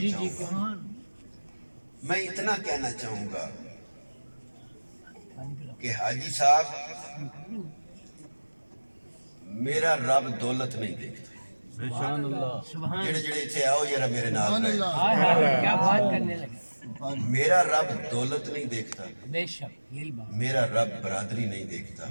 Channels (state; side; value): inverted; both; correlation -1.00